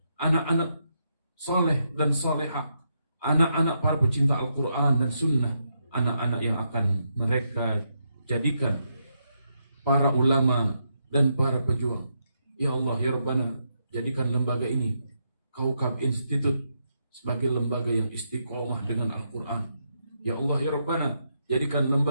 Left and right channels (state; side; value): inverted; both; correlation -0.81